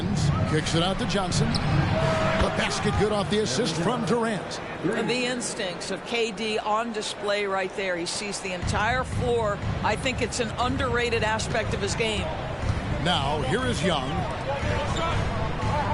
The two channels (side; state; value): both; identical; correlation 1.00